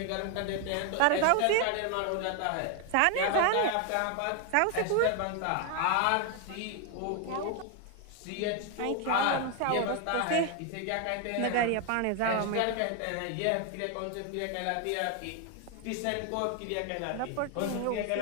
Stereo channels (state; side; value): different; both; correlation 0.01